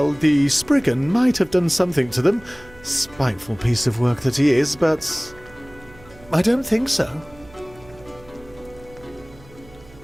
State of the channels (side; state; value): right; noise; hum, 23 dB below the sound